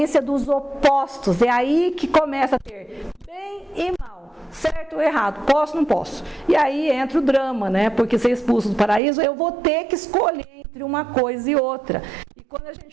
dos opostos. É aí que começa a ter bem e mal, certo ou errado, posso ou não posso. E aí entra o drama, né? Porque ser expulso do paraíso, eu vou ter que escolher entre uma coisa e outra. E quando a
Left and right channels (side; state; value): left; drops out; at 9.0 s